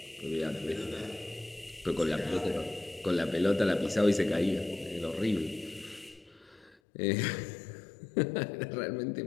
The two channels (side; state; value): right; drops out; at 6.8 s